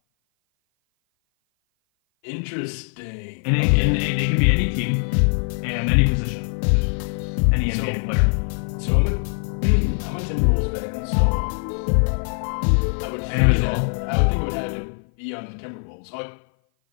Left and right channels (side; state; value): right; silent; 57 dB below the other